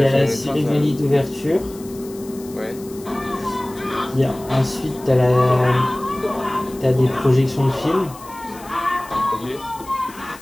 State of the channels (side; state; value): left; noise; hiss, 20 dB below the sound